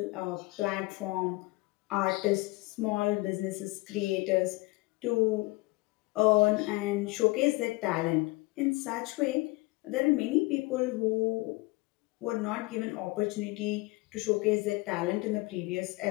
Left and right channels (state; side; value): quieter; right; 23.2 dB